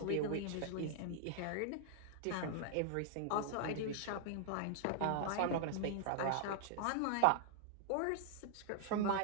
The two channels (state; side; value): different; both; correlation -0.01